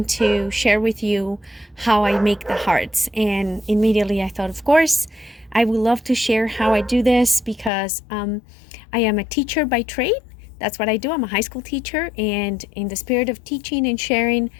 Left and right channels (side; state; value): right; drops out; at 7.7 s